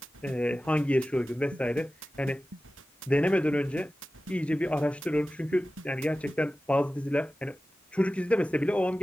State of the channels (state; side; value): normal; both; correlation 0.95